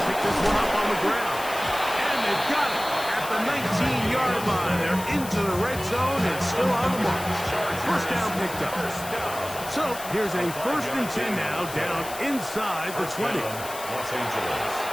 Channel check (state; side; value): noise; left; hiss, 12 dB below the sound